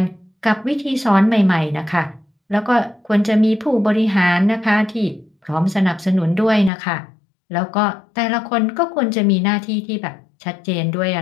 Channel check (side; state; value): right; drops out; at 6.7 s